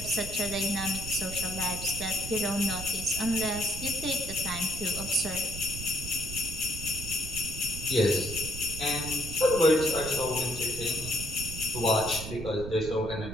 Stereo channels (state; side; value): noise; right; rumble, 8 dB below the sound